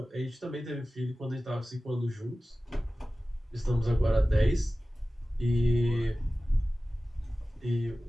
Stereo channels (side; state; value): both; normal; correlation 0.96